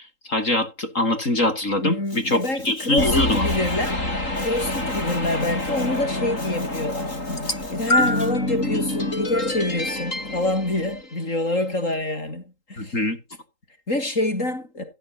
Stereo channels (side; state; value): right; late; 3.8 ms